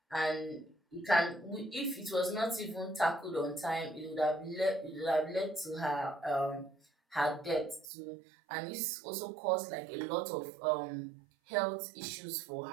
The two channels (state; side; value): drops out; left; at 7.9 s